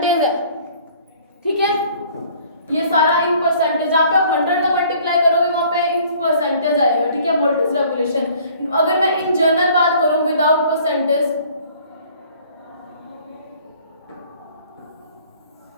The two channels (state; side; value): inverted; both; correlation -0.54